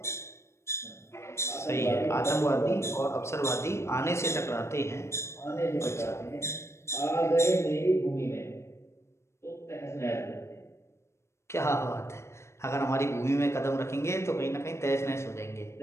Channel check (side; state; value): right; late; 0.13 ms